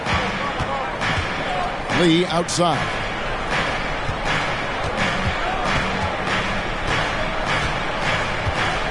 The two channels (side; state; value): both; identical; correlation 1.00